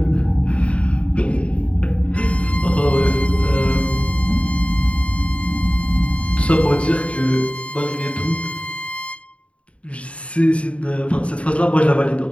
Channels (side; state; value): right; late; 0.063 ms